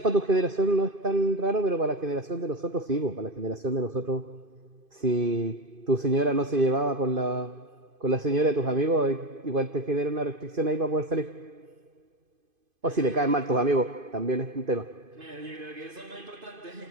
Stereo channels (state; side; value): late; left; 2.5 ms